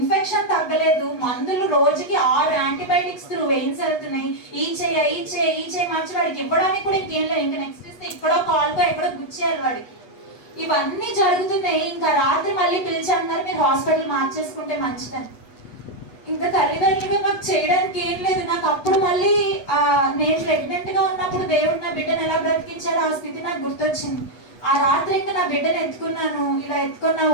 తగ్గలేదు, మందులు రోజుకి 6 యాంటీబయాటిక్స్ త్రూ వెయిన్స్ వెళ్తున్నాయి, ఈ చేయి మార్చి వాడికి ఇవ్వడానికి కూడా ఇంకేం లేదు, ఇంకా నెక్స్ట్ ఇస్తే ఇక్కడో కాల్కో ఎక్కడో గుచ్చేయాలి వాడికి. ఇవన్నీ జరుగుతున్నాయి. ఇంకా రాత్రి మళ్ళీ పిలిచారు, మీరు హాస్పిటల్ మార్చేసుకుంటే మంచిదని. ఇంకా తల్లిదండ్రులు మాకు చేయడానికి ఏం లేదు. నాకు అప్పుడు మళ్ళీ నేను ప్రెగ్నెంట్ గా ఉన్నప్పుడు దేవుడు నా బిడ్డను ఎలా బ్రతికించారో ఆ స్థితి నాకు గుర్తొచ్చింది. ఆ రాత్రి ఇంకా నా బిడ్డను ఎత్తుకున్నాను, ఇలా ఎత్తుకున్న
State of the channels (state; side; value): late; right; 8.2 ms